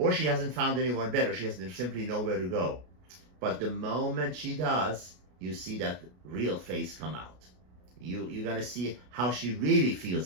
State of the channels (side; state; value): left; late; 33 ms